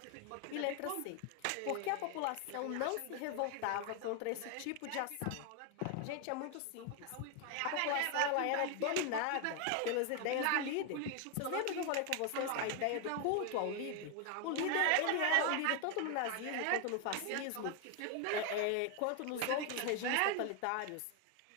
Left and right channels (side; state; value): both; different; correlation 0.01